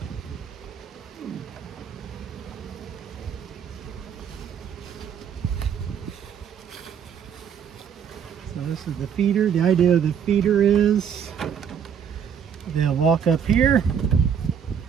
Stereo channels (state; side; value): quieter; left; 7.7 dB